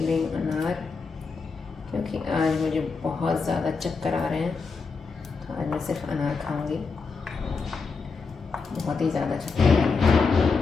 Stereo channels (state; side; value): quieter; right; 4.8 dB